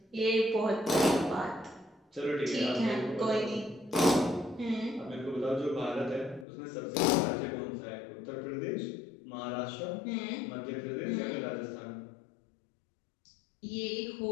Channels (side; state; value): right; drops out; at 6.5 s